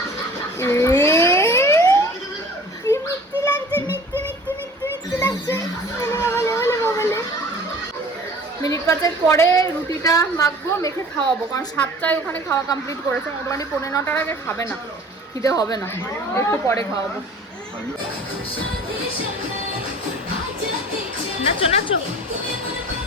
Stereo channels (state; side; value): normal; both; correlation 0.46